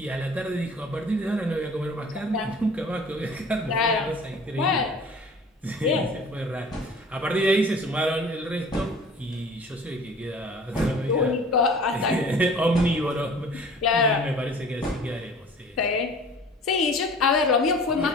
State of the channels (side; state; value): both; normal; correlation 0.46